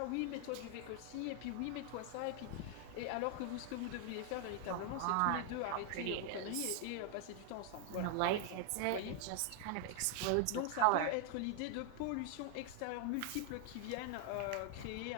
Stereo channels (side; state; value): both; different; correlation 0.00